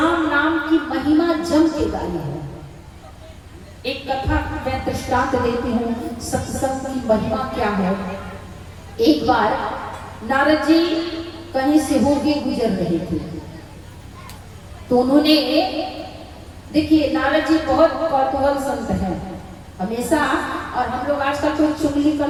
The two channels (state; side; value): identical; both; correlation 1.00